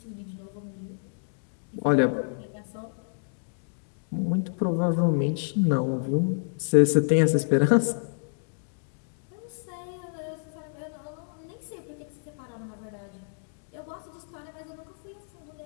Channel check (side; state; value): right; silent; digital silence